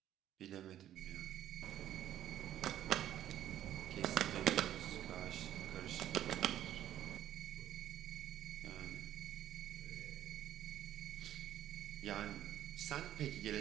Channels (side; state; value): left; quieter; 11.8 dB